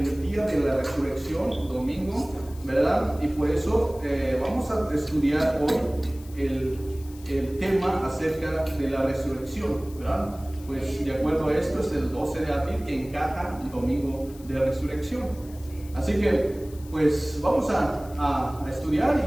día de la resurrección, domingo, ¿verdad? Y por eso vamos a estudiar hoy el tema acerca de la resurrección, ¿verdad? Pues de acuerdo a esto es el 12 de abril que encaja el domingo de resurrección. Así que pues vamos a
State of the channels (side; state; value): left; noise; hiss, 22 dB below the sound